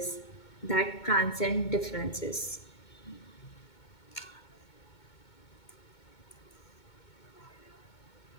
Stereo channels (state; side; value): late; right; 2.2 ms